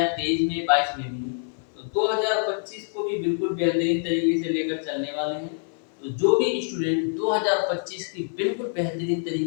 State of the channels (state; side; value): silent; right; 61 dB below the other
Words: 23 में, 22 में भी, तो 2025 को भी बिल्कुल बेहतरीन तरीके से लेकर चलने वाले हैं। तो जो भी स्टूडेंट 2025 की बिल्कुल बेहतरीन